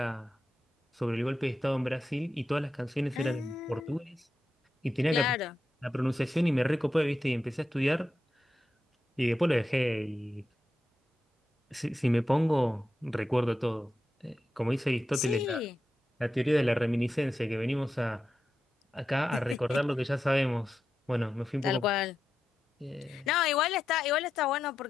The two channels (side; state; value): both; normal; correlation 0.88